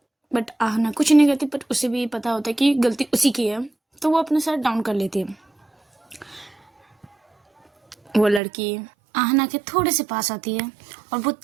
बट आहना कुछ नहीं कहती, बट उसे भी पता होता है कि गलती उसी की है, तो वो अपना सर डाउन कर लेती है। वो लड़की आहना के थोड़े से पास आती है और वो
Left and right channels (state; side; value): drops out; left; at 8.4 s